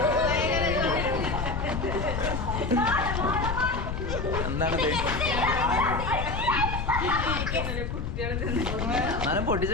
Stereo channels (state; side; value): noise; left; rumble, 3 dB below the sound